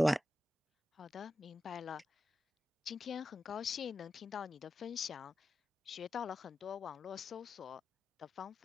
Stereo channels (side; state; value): both; normal; correlation 0.92